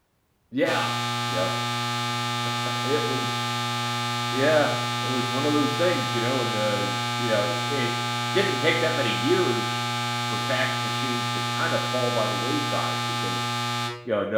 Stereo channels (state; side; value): identical; both; correlation 1.00